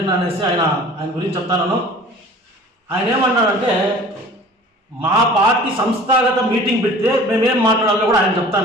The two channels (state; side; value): normal; both; correlation 0.45